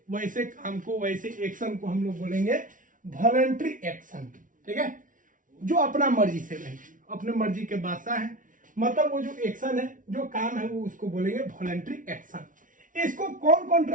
वैसे काम को, वैसे एक्शन को हम लोग बोलेंगे वॉलंटरी एक्शन। ठीक है, जो अपना मर्जी से नहीं, अपने मर्जी के बादशाह है, मतलब वो जो एक्शन है, जो काम है, वो उसको बोलेंगे वॉलंटरी एक्शन। इसको कौन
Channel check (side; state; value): left; late; 0.38 ms